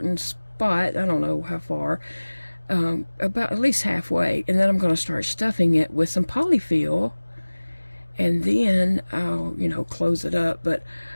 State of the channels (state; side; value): inverted; both; correlation -1.00